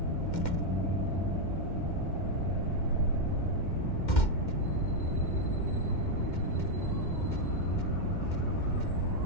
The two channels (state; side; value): late; right; 2.1 ms